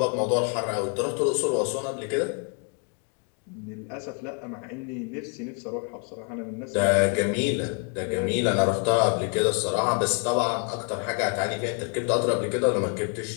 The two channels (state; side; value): quieter; right; 37.6 dB